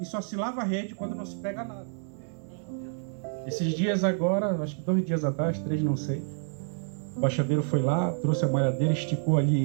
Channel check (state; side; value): silent; left; digital silence